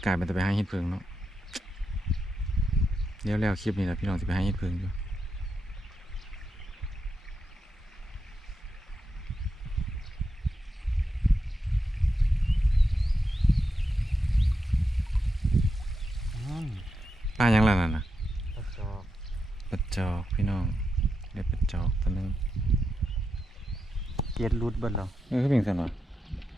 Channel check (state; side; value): normal; both; correlation 0.86